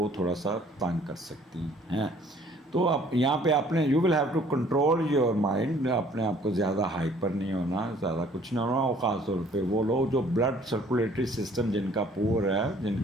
تھوڑا سا تنگ کر سکتی ہیں. تو آپ یہاں پہ آپ نے you will have to control your mind. اپنے آپ کو زیادہ ہائپر نہیں ہونا, زیادہ کچھ نہیں ہونا. اور خاص طور پہ وہ لوگ جو بلڈ سرکولیٹری سسٹم جن کا پور ہے, جن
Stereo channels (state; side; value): normal; both; correlation 0.57